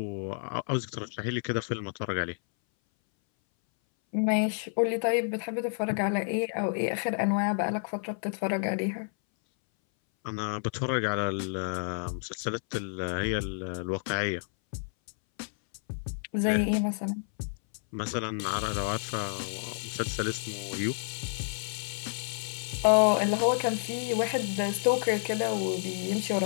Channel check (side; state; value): right; silent; 58 dB below the other